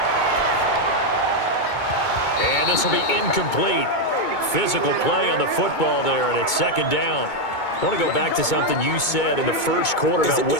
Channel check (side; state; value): right; late; 2.2 ms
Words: And this will be incomplete. Physical play on the football there, and it's second down. I want to go back to something you said in the first quarter about